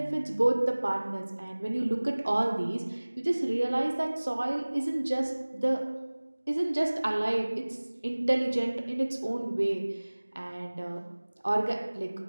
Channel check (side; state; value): both; inverted; correlation -1.00